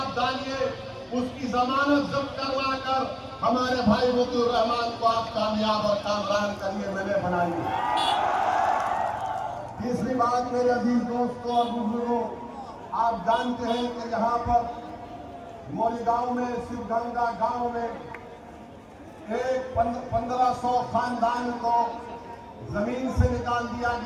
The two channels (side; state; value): both; identical; correlation 1.00